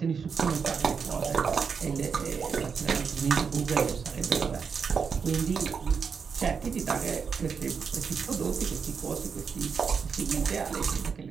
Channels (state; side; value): quieter; left; 6.0 dB